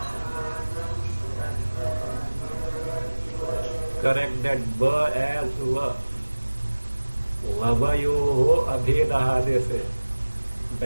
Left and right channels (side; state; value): both; inverted; correlation -1.00